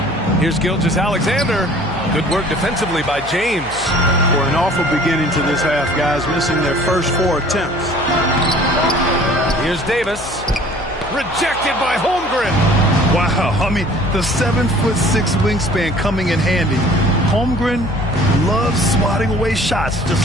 Here's Gilgeous-Alexander. Good work defensively by James. For an awful beginning to this half, guys, missing their first 4 attempts. Here's Davis. Rejected by Holmgren. Wow, I mean, the 7'6" wingspan coming in handy. Holmgren loves swatting away shots just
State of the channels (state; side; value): noise; left; hum, 17 dB below the sound